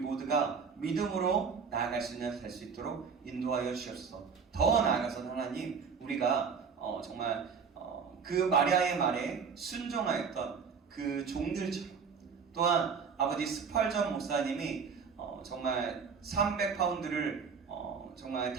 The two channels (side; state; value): left; quieter; 5.9 dB